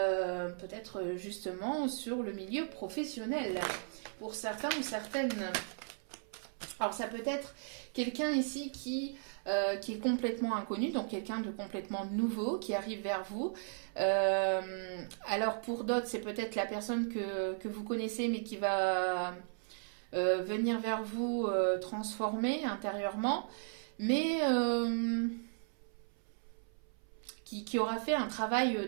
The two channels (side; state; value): left; silent; 54 dB below the other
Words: justement sur le milieu professionnel, pour certains ou certaines. Alors ça peut être quelqu'un ici qui est complètement inconnu, donc quelqu'un de complètement nouveau qui arrive vers vous. Alors pour d'autres, c'est peut-être la personne que vous connaissez mais qui va venir vers vous transformer intérieurement, mais qui aura fait un travail